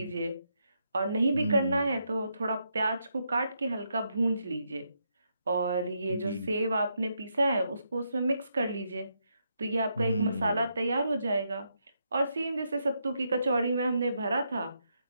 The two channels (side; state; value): both; inverted; correlation -0.80